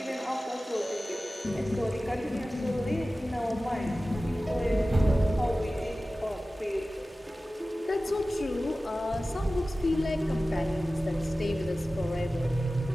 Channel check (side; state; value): both; normal; correlation 0.96